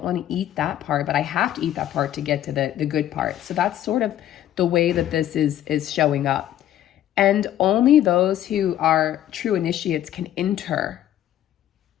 want to eat that part, but I have to eat that part to get to the good part. So that's sort of the way that this is showing up. And only those who are true initiates can enter.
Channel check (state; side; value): quieter; right; 12.0 dB